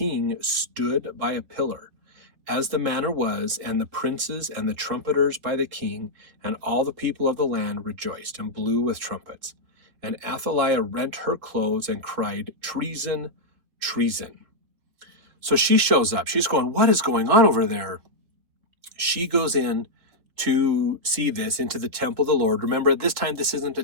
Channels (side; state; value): left; late; 3.5 ms